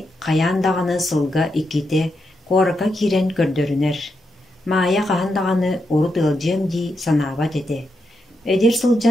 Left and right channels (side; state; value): both; normal; correlation 0.84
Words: қаяндағаны сылға иките қорака кирен көрдөрінер. Мая қағандағаны урут ылжем ди санабат ете. Эдер